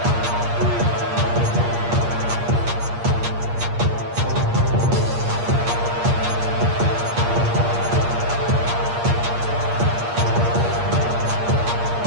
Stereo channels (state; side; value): late; left; 8.5 ms